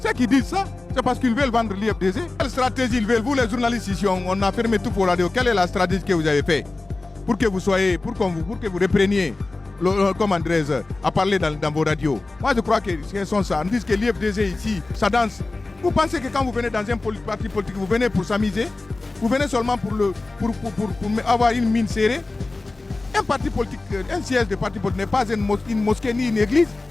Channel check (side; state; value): right; quieter; 3.3 dB